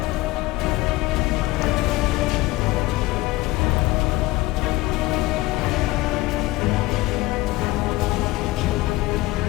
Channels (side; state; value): right; quieter; 19.5 dB